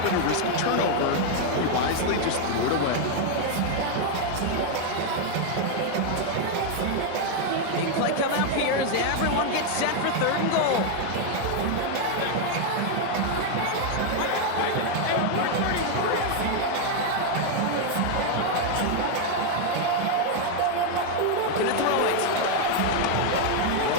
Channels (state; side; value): different; both; correlation 0.00